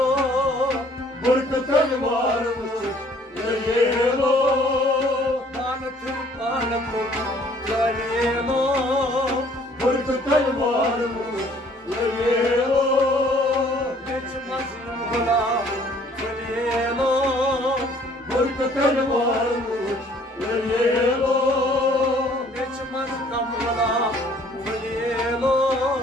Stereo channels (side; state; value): both; normal; correlation 0.58